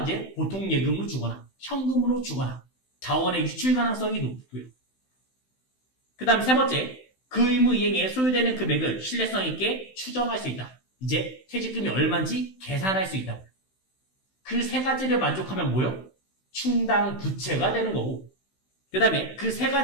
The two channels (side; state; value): right; late; 16 ms